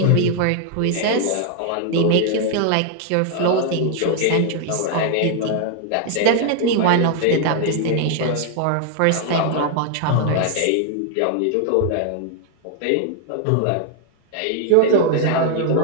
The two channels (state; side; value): different; both; correlation 0.00